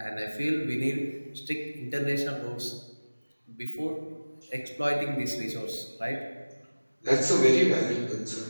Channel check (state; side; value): inverted; both; correlation -1.00